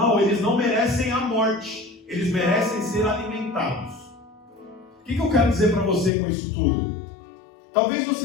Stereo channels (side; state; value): right; drops out; at 6.1 s